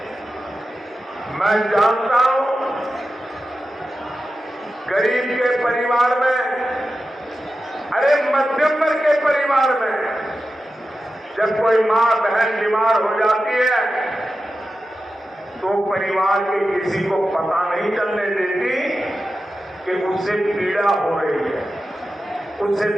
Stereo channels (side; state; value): both; normal; correlation 0.92